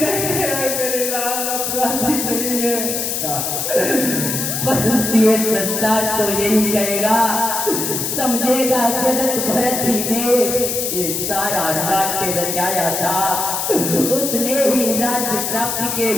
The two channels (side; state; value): left; noise; hiss, 2 dB below the sound